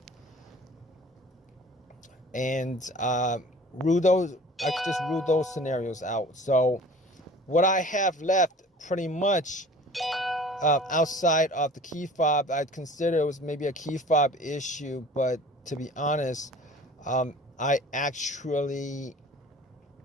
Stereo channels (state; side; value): normal; both; correlation 0.45